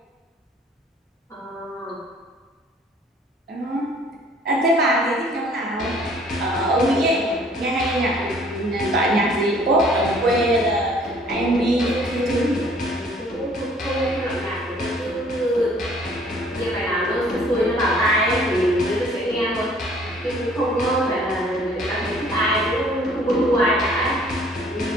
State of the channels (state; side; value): normal; both; correlation 0.57